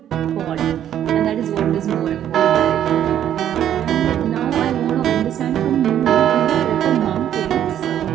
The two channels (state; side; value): quieter; left; 10.6 dB